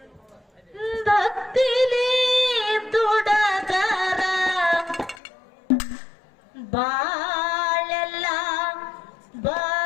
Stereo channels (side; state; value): right; drops out; at 5.2 s